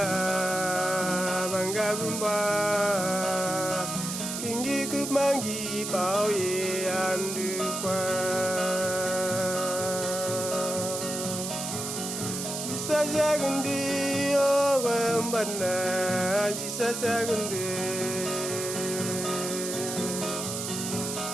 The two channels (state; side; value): noise; right; hiss, 5 dB below the sound